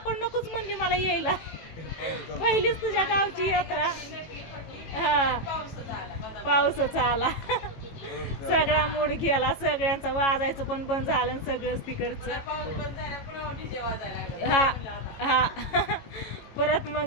नकोच म्हणली मला यायला. पहिलीच तुझ्या गावची यात्रा. हा, पाऊसच आला. सगळा मूड गेला, सगळ्यांचं वाजायचं पण बंद झालं सगळंच तिकडचं. हा हा परत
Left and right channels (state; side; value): late; right; 18 ms